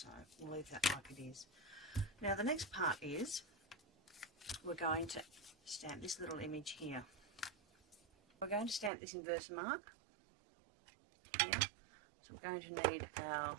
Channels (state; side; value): drops out; left; at 8.9 s